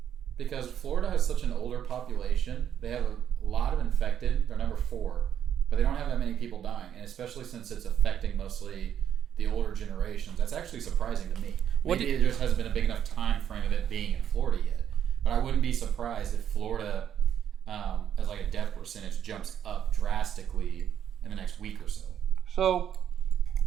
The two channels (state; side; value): quieter; left; 9.5 dB